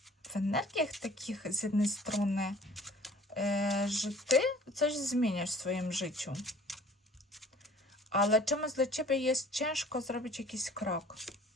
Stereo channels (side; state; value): both; normal; correlation 0.50